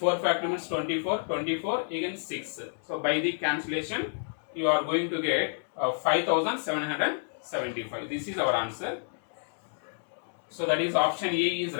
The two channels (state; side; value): silent; right; digital silence